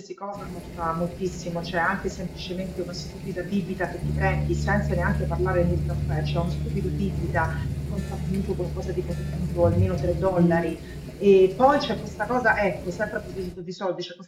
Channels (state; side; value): identical; both; correlation 1.00